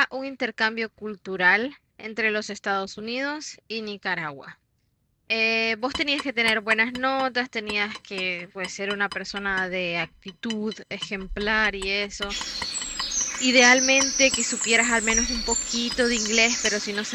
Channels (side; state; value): both; identical; correlation 1.00